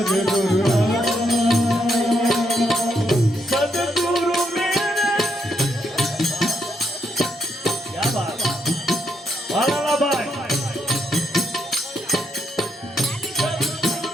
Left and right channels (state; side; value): normal; both; correlation 0.78